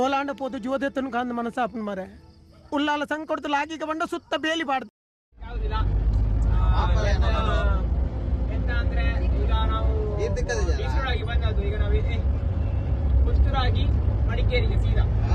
ಪೋದು ಜೋದೆತ್ತನು ಕಾಂದ ಮನಸ್ಸಾಪನ್ ಮರೆ ಉಲ್ಲಾಲ ಸಂಕೊಡ್ತು ಲಾಗಿಗೆ ಬಂಡ ಸುತ್ತ ಬೇಲಿ ಬಾಡ್ದು ಯಾವುದಿಲ್ಲ. ಎಂತ ಅಂದ್ರೆ ಈಗ ನಾವು ಮೈಸೂರಾಗಿ ಬಂದದ್ದು, ಈಗ ನಾವು ಪುತ್ತೂರಾಗಿ ಮಡಿಕೇರಿಗೆ ಸೀದಾ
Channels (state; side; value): identical; both; correlation 1.00